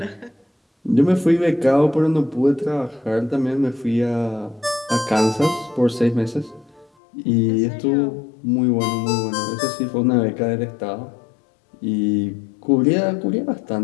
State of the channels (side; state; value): right; drops out; at 6.9 s